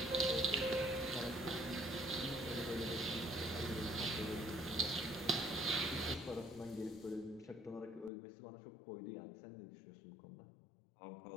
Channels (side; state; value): right; drops out; at 8.1 s